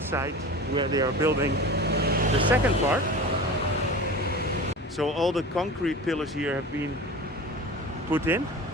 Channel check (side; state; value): both; normal; correlation 0.34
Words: where they are building the second part. So all the concrete pillars here have been put in.